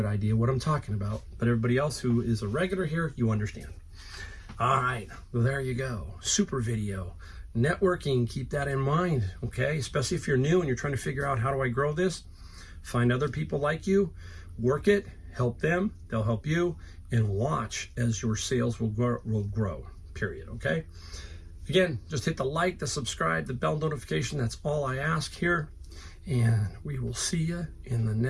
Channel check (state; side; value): identical; both; correlation 1.00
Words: idea what I'm talking about. But everybody else who is a regular here, you understand. All right, well, there you go. Super video. Networking, keep that in mind, okay? Especially if you're new and you're trying to figure out, how do I grow this? Find other people like you, work it, help them, they'll help you, and watch as your sales will grow, period, okay? Again, just hit the like, the subscribe, the bell notification. That's all I ask here. And we will see you in the